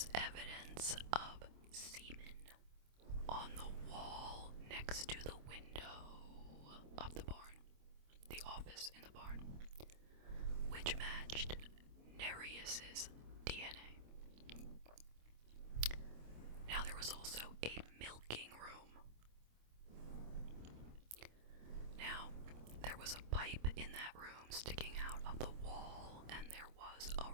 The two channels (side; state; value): left; late; 26 ms